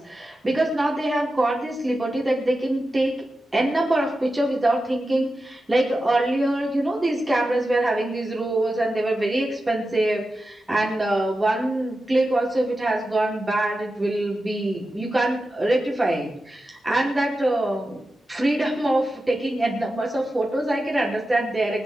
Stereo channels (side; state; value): both; normal; correlation 0.91